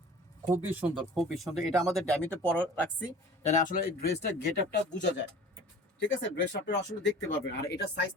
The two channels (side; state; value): both; normal; correlation 0.44